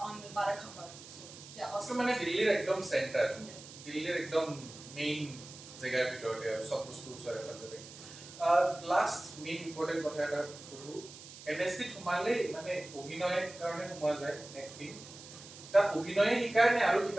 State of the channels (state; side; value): noise; right; hiss, 16 dB below the sound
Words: on Barakhamba. So yeah, hostel মানে দিল্লীৰ একদম centre দিল্লীৰ একদম main জায়গাৰ ভিতৰতে আৰু সব বস্তু ওচৰে পাজৰে লাষ্ট মেইন ইম্পৰ্টেন্ট কথা এটা কৰো NSD সোমালে মানে অভিনয়ৰ কাৰণে সোমোৱা যায় এক্টিং তাত অভিনয়ে শিকায় নে আৰু